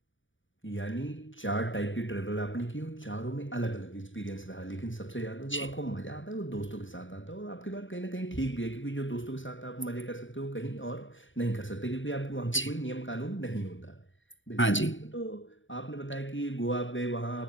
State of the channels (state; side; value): late; right; 0.56 ms